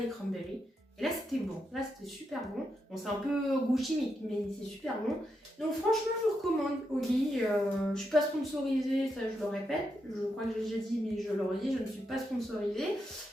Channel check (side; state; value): both; normal; correlation 0.83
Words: cranberries. Et là, c'était bon. Là, c'était super bon. Bon, c'est un peu goût chimique, mais c'est super bon. Donc, franchement, je vous recommande Oli. Je suis pas sponsorisée, ça, je le répète. Je crois que j'ai déjà dit, mais je le redis, je ne suis pas sponsorisée.